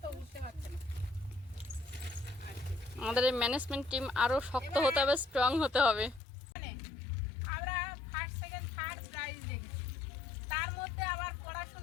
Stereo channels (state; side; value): drops out; right; at 6.2 s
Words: তো উঠতে পারছে না। আমাদের এই ম্যানেজমেন্ট টিম আরো শক্ত হতে হবে, স্ট্রং হতে হবে। মানে আমরা ফার্স্ট সেকেন্ড থার্ড প্রাইজ দেখেছি, তার মধ্যে আবার